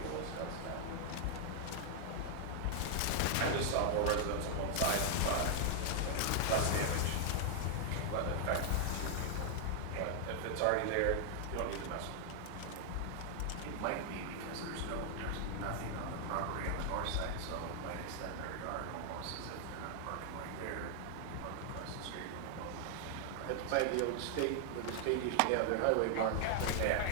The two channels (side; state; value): both; different; correlation 0.00